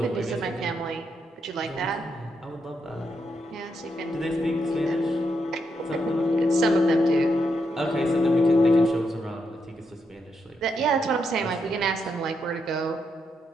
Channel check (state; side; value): normal; both; correlation 0.81